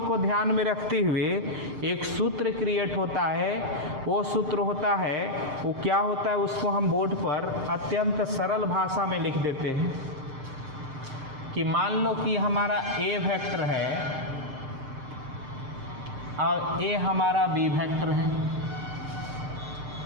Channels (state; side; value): late; left; 7.6 ms